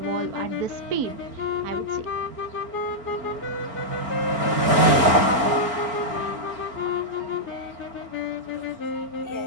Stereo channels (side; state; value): left; late; 4.4 ms